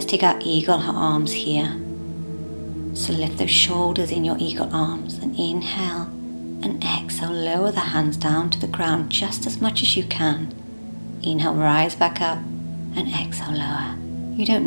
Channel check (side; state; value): both; inverted; correlation -1.00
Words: take our eagle arms here. So lift those shoulders in your eagle arms and inhale and exhale, lower the hands down to the ground just as much as you can. Inhale, rise back up, and exhale, lower. You